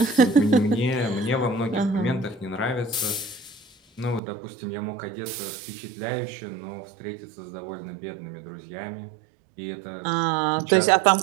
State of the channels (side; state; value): left; drops out; at 4.2 s